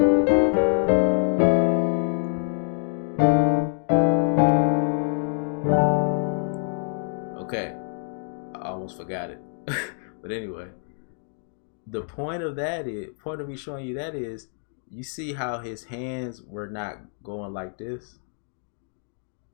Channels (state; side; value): silent; right; 61 dB below the other